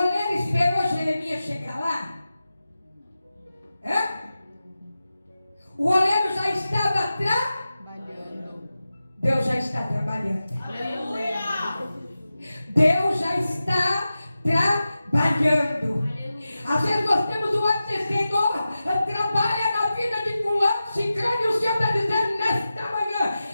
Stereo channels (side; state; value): both; inverted; correlation -0.93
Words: esperou Jeremias chegar lá? É? O oleiro já estava trabalhando. Deus já está trabalhando. Aleluia. Deus já está trabalhando. Às vezes nós temos o ato de Senhor, trabalha na vida de fulano, ciclano, e o Senhor está dizendo nesta manhã: